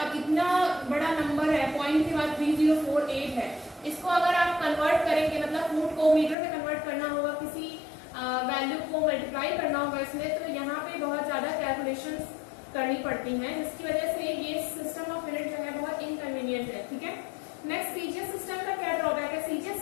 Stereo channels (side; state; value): right; drops out; at 6.4 s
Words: अब इतना बड़ा नंबर है, पॉइंट के बाद 3048 है, इसको अगर आप कन्वर्ट करेंगे, मतलब फुट को मीटर में कन्वर्ट करना होगा, किसी वैल्यू को मल्टीप्लाई करना होगा इसमें, तो यहाँ पे बहुत ज्यादा कैलकुलेशंस करनी पड़ती हैं, जिसकी वजह से ये सिस्टम ऑफ यूनिट जो है बहुत इनकन्वीनियंट है। ठीक है, नेक्स्ट CGS सिस्टम का क्या ड्रॉबैक है। CGS